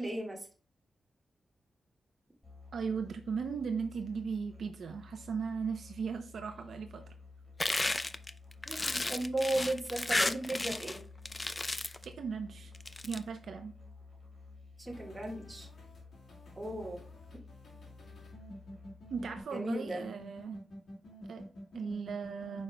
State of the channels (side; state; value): both; normal; correlation 0.91